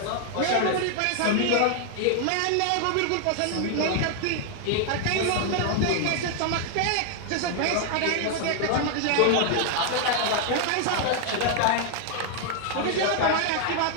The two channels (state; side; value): different; both; correlation 0.00